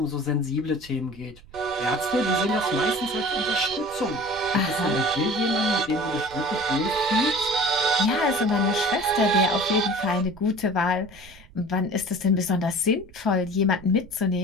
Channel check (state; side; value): noise; right; rumble, 22 dB below the sound